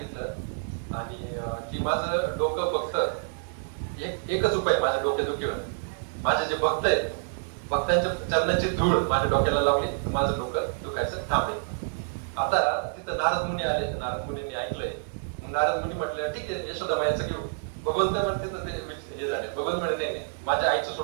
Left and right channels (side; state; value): left; silent; digital silence